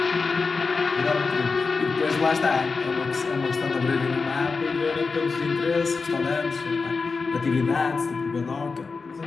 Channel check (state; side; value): quieter; right; 4.5 dB